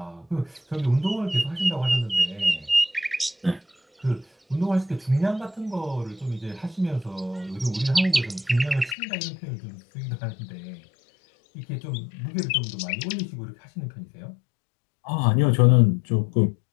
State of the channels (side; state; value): right; drops out; at 9.0 s